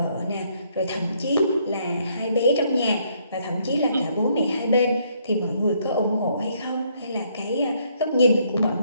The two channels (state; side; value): inverted; both; correlation -0.69